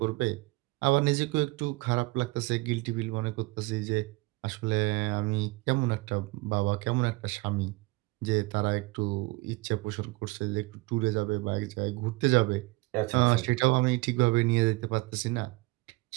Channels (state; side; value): quieter; left; 23.0 dB